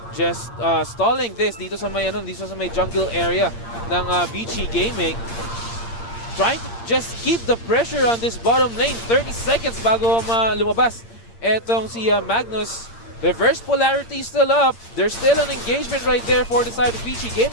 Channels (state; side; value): late; right; 8.7 ms